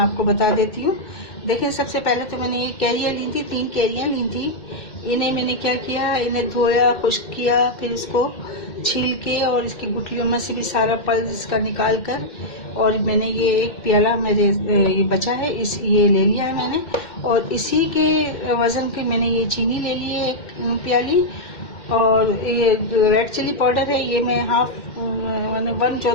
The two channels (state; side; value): late; right; 2.1 ms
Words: बता देती हूँ। देखिए, सबसे पहले तो मैंने ये कैरियाँ ली थी, 3 कैरियाँ ली थी। इन्हें मैंने क्या किया, इन्हें धोया, खुश्क किया, फिर इसको छील के और इसकी गुठलियों में से भी सारा पल्स इसका निकाल कर, और मैंने ये एक प्याला मेरे ये बचा है, ये ले लिया है मैंने। और इसी के वज़न की मैंने ये चीनी ले ली है, 1 प्याली। और ये रेड चिली पाउडर है, ये मैं मैंने